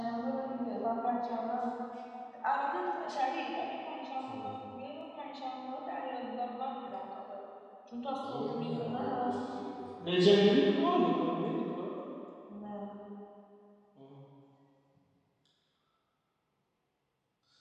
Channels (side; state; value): both; identical; correlation 1.00